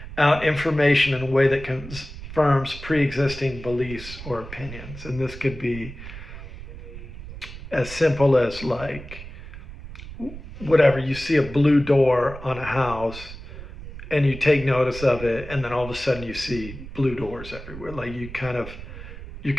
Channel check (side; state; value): right; noise; rumble, 13 dB below the sound